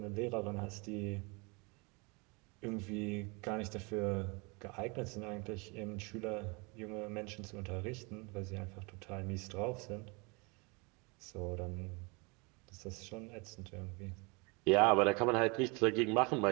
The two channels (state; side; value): quieter; left; 29.4 dB